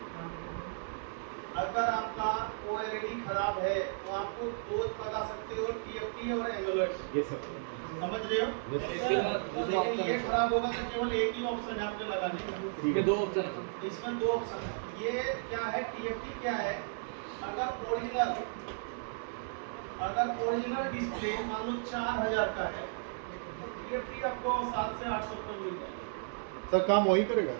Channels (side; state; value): left; silent; digital silence